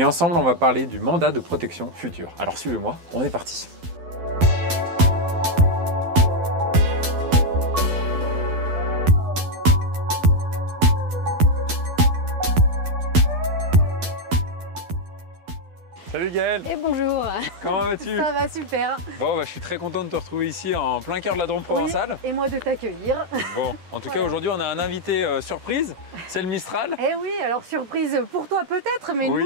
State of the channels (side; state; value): left; late; 12 ms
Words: ensemble on va parler du mandat de protection future. Alors suivez-moi, on est parti. Salut Gaël. Et bonjour. Comment vas-tu? Ça va super. Bon, je suis très content de te retrouver ici en plein cœur de la Drôme provençale. Oui, et moi de t'accueillir. Bon, en tout cas aujourd'hui on a un invité surprise, c'est le Mistral. Eh oui, alors surprise pour toi peut-être, mais oui.